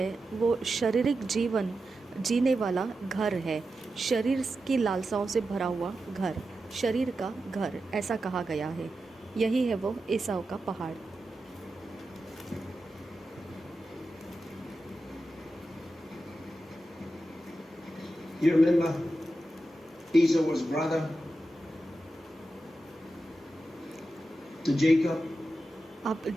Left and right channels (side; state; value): both; normal; correlation 0.90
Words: वो शारीरिक जीवन जीने वाला घर है, शरीर की लालसाओं से भरा हुआ घर, शरीर का घर, ऐसा कहा गया है। यही है वो एसाव का पहाड़। You remember Esau was brother to Jacob. आप